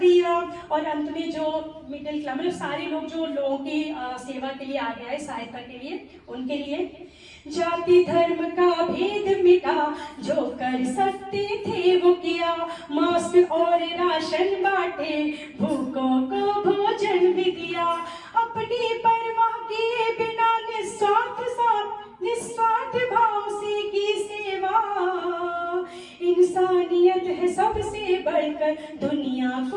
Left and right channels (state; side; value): identical; both; correlation 1.00